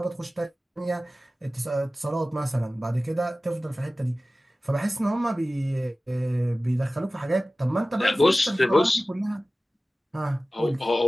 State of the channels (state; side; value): normal; both; correlation 0.96